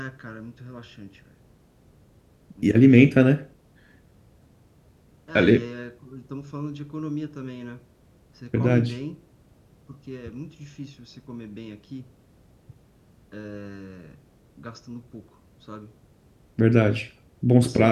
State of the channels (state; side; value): identical; both; correlation 1.00